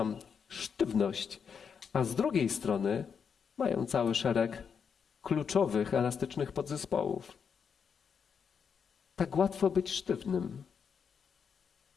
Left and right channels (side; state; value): right; quieter; 6.6 dB